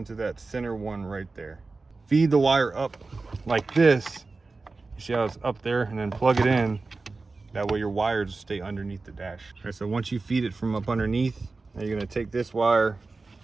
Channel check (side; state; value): left; quieter; 3.8 dB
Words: that center one right there. Feed the wire up like this. You see how it's up there, and then plug it in. That way your wires stay underneath the dash. All right, so once you feed it from up underneath, now you're gonna take this wire